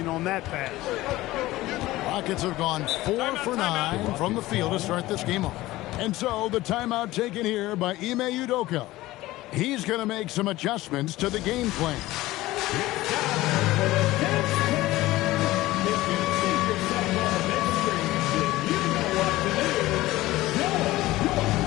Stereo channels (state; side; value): quieter; right; 17.5 dB